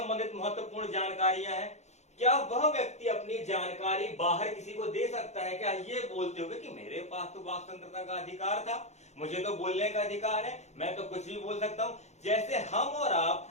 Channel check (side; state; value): right; late; 0.33 ms